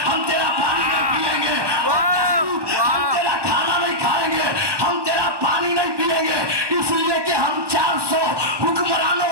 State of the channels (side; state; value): left; late; 1.2 ms